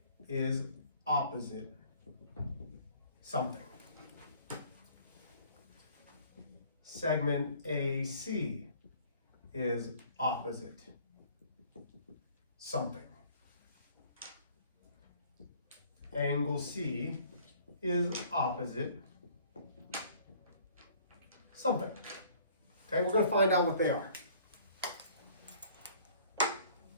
is opposite something. Segment AC is opposite something. Angle C is opposite something. Okay, we're going to find out what they are.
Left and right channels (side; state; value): both; inverted; correlation -0.55